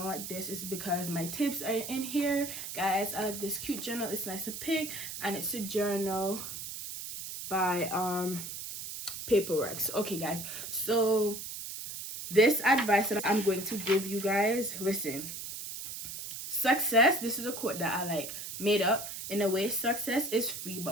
like this, it's because my tips are in here. Guys, I like this cute journal. It's nice and pink, and it's a journal by Paperworks. Okay guys, so this advice that I'm going to give you guys, listen. Success, this is a quote that I like made up. In a way, success is free,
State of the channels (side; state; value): right; noise; hiss, 8 dB below the sound